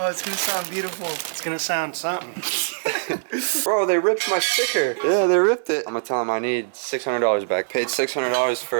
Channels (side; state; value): left; silent; digital silence